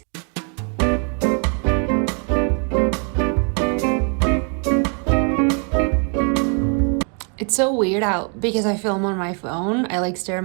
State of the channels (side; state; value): left; quieter; 38.9 dB